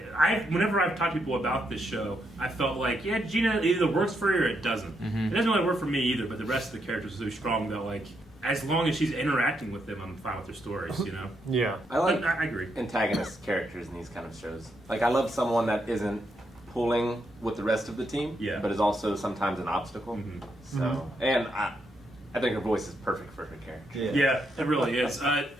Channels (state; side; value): normal; both; correlation 0.79